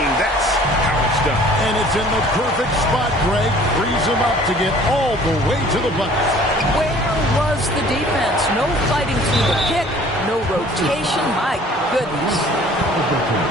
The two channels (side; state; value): both; normal; correlation 0.51